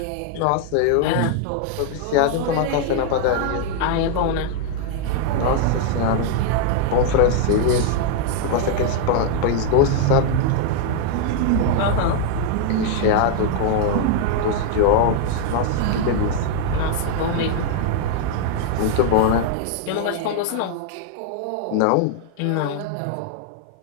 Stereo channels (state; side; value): different; both; correlation 0.00